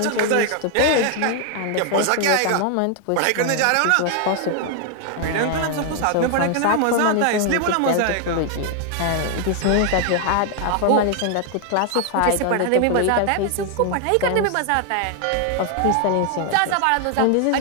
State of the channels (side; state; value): both; different; correlation 0.00